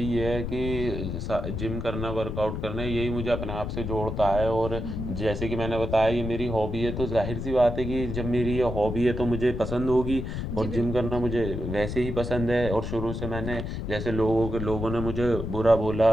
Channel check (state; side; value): noise; left; rumble, 4 dB below the sound